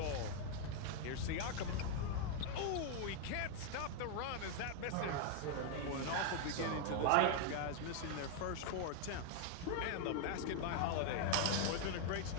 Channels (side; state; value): both; different; correlation 0.00